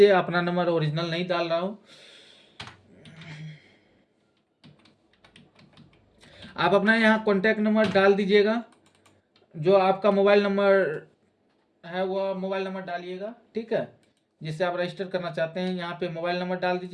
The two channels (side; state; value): both; identical; correlation 1.00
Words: अपना नंबर ओरिजिनल नहीं डाल रहा हूँ। आप अपना यहाँ कॉन्टैक्ट नंबर डाल दीजिएगा, जो आपका मोबाइल नंबर है वह मोबाइल नंबर डालिएगा, ठीक है, जिससे आप रजिस्टर करना चाहते हैं। यहाँ पे मोबाइल नंबर डाल